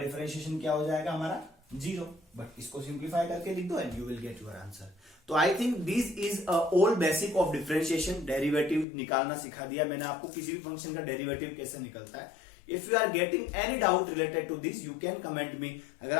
क्या हो जाएगा हमारा 0, बट इसको सिंप्लीफाई करके लिख दो and you will get your answer. तो I think this is all basic of differentiation, derivative निकालना सिखा दिया मैंने आपको, किसी भी फंक्शन का डेरिवेटिव कैसे निकलता है। If you are getting any doubt related to this you can comment me. अगर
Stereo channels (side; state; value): right; drops out; at 8.8 s